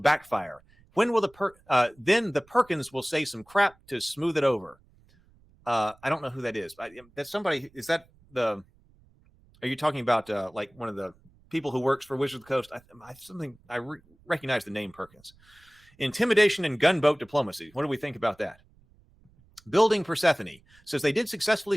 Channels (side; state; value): right; noise; rumble, 30 dB below the sound